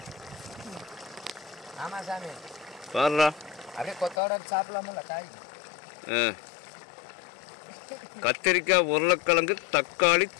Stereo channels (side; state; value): right; drops out; at 4.2 s